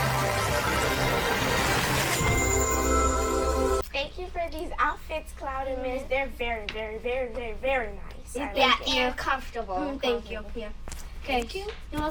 Thank you for these outfits, Cloud and Mist. They're very, very, very, very, very nice. I Yeah, like it. you're comfortable. Thank you. Yeah. Okay. Thank you. You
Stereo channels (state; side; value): identical; both; correlation 1.00